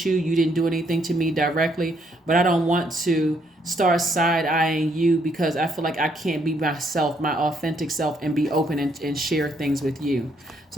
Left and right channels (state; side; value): normal; both; correlation 0.71